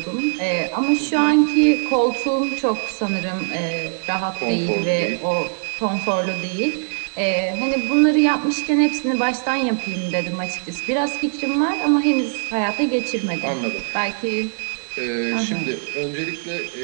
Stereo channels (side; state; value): left; silent; digital silence